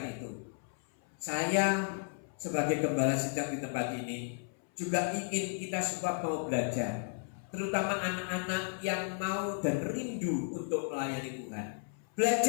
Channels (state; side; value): silent; right; 55 dB below the other